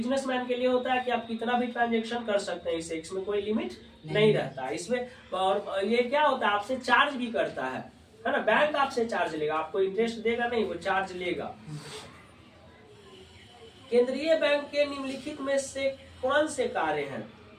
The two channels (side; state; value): both; identical; correlation 1.00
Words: के लिए होता है कि आप कितना भी ट्रांजेक्शन कर सकते हैं इससे, इसमें कोई लिमिट नहीं रहता है इसमें। और ये क्या होता है, आपसे चार्ज भी करता है ना, बैंक आपसे चार्ज लेगा, आपको इंटरेस्ट देगा नहीं, वो चार्ज लेगा। केंद्रीय बैंक के निम्नलिखित में से कौन से कार्य हैं?